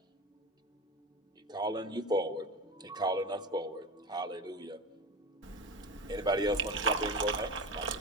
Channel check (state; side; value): normal; both; correlation 0.27